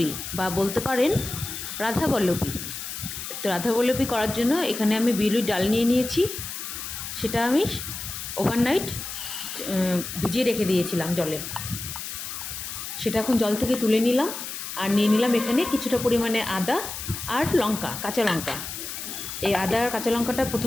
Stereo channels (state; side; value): noise; left; hiss, 7 dB below the sound